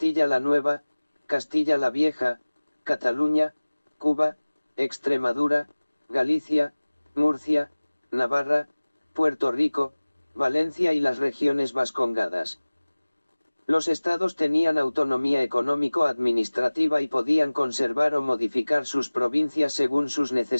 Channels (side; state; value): both; inverted; correlation -1.00